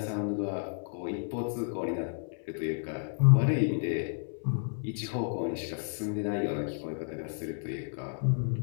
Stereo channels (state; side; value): silent; right; 57 dB below the other